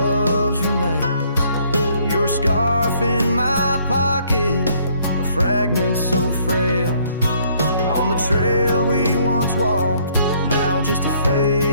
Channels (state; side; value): inverted; both; correlation -0.64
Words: remains. Your scarf in my pocket, a fragment so frail, on the trail we once walked, now just a